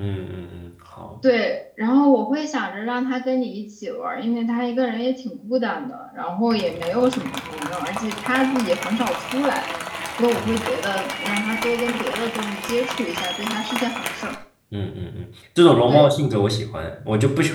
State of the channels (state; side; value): identical; both; correlation 1.00